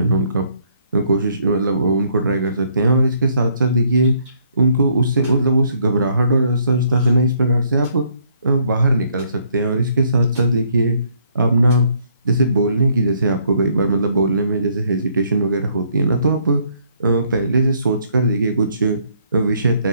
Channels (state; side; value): inverted; both; correlation -0.67